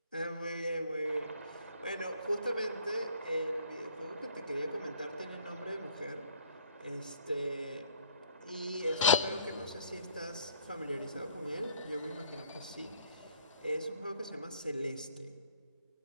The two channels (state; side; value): inverted; both; correlation -0.57